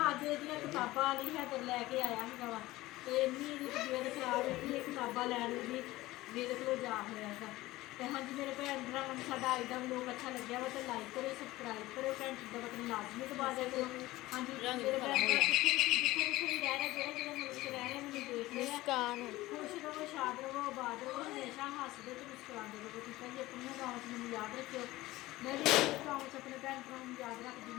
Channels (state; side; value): quieter; right; 18.0 dB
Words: ਅੱਜ ਇਹਦੀਆਂ ਕਿਤਾਬਾਂ ਵਾਲੀ ਹੈ ਤੇ ਲੈ ਕੇ ਆਇਆ ਹੈਗਾ ਵਾ। ਤੇ ਇੰਨੀ ਇਹਦੀ ਤਬੀਅਤ ਖਰਾਬ ਹੈ ਕਿ ਇਹ ਕਿਤਾਬਾਂ ਲੈਣ ਦੀ ਮੇਰੇ ਕੋਲ ਜਾ ਹੋਇਆ ਹੈਗਾ। ਤੇ ਹਾਂਜੀ ਮੇਰੇ ਭੈਣ ਭਰਾਵਾਂ ਨੂੰ ਸਾਡਾ ਅੱਜ ਦਾ ਵਲੋਗ ਅੱਛਾ ਲੱਗਿਆ ਵਾ ਤੇ ਲਾਈਕ ਕਰਿਓ, ਸਬਸਕ੍ਰਾਈਬ ਕਰਿਓ, ਘੰਟੀ ਦਾ ਬਟਨ ਲਾਜ਼ਮੀ ਦਬਾ ਦਿਆ ਕਰੋ। ਹਾਂਜੀ ਮੇਰੇ ਭੈਣ ਭਰਾ ਜਿੱਥੇ ਵੀ ਰਹਿ ਰਹੇ, ਜਿਹੜੇ ਮੁਲਕ 'ਚ ਰਹਿ ਰਹੇ ਮੈਨੂੰ ਦੇਖ ਰਹੇ ਆ, ਖੁਸ਼ ਰਹੋ, ਸ਼ਾਦ ਰਹੋ, ਆਬਾਦ ਰਹੋ, ਹਮੇਸ਼ਾ ਹੱਸਦੇ ਤੇ ਮੁਸਕਰਾਉਂਦੇ ਰਹੋ। ਠੀਕ ਹੈ ਜੀ, ਆਪਣੀਆਂ ਗਾਵਾਂ 'ਚ ਮੈਨੂੰ ਯਾਦ ਰੱਖਿਓ। ਮੈਂ ਵੀ ਆਪਣੇ ਗਾਵਾਂ 'ਚ ਆਪਣੇ ਭੈਣ ਭਰਾਵਾਂ ਨੂੰ ਯਾਦ ਰੱਖਦੀ।